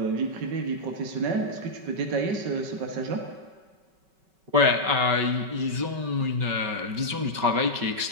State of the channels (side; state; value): left; late; 5.2 ms